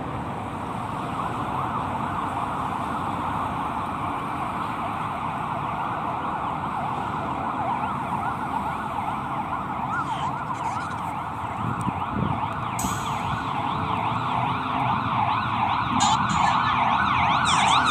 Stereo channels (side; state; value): both; identical; correlation 1.00